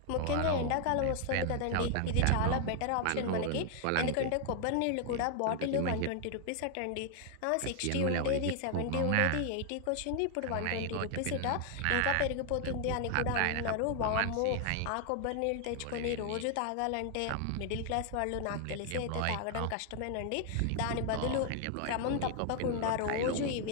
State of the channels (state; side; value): different; both; correlation 0.00